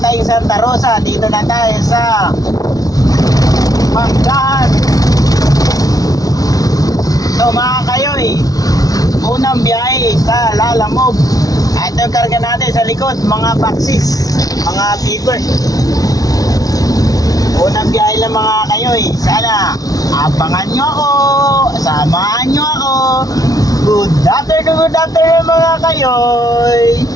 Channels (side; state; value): right; late; 0.18 ms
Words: tayong Santa Rosa. Dito na tayo sa Manggahan. So mga kayoy, unang biyahe sa Lalamog. Ito yung karga natin sa likod, mga boxes, mga papers. Unang biyahe lang mga kayoy. Sana abangan nyo ako, samahan nyo ako. Good afternoon mga kayoy.